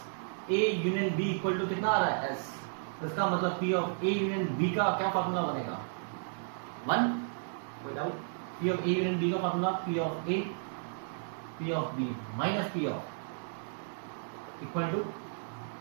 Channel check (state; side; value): silent; left; digital silence